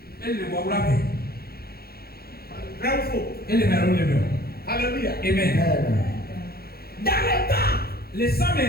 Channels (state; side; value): late; right; 0.45 ms